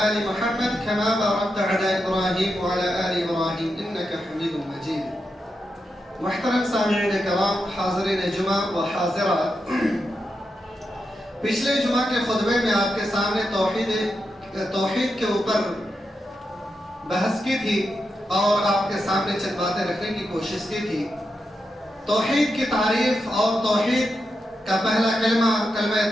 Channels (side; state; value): both; normal; correlation 0.87